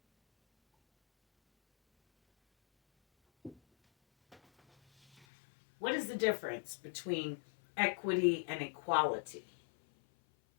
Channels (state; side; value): drops out; right; at 5.2 s